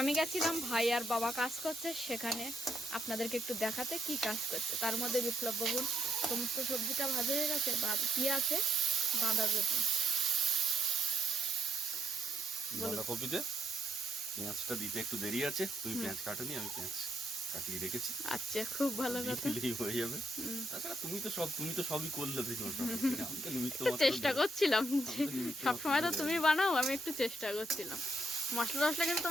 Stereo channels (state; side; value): normal; both; correlation 0.75